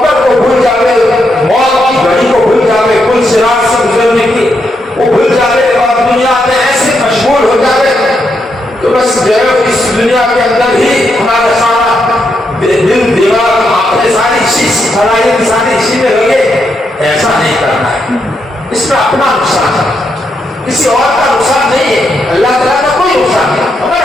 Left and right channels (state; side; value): normal; both; correlation 0.81